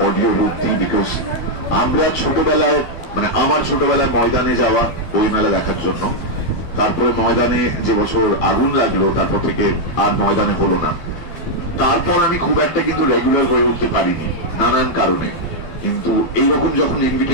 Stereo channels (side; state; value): right; late; 12 ms